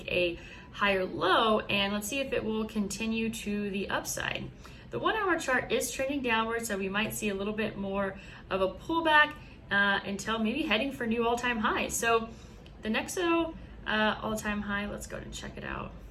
a higher low, and let's see if it will continue to the upside. The 1-hour chart is trending downward, so we might see a little bit more of a pullback until maybe heading for new all-time highs. So the Nexo all-time high, let's go ahead and check it out.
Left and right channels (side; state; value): both; identical; correlation 1.00